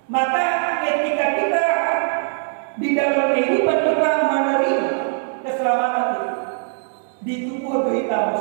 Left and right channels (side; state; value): left; silent; 65 dB below the other